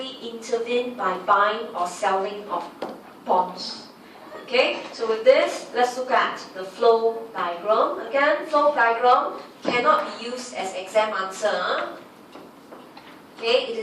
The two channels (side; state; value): both; identical; correlation 1.00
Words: intervene by buying or selling of bonds. Okay, so with this, let's look at the flow diagram. Again, flow diagram cannot be used as exam answer. Okay, it